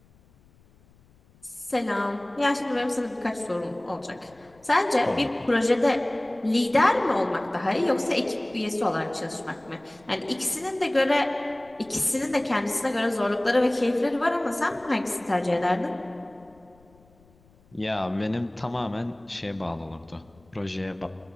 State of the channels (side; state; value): left; noise; rumble, 30 dB below the sound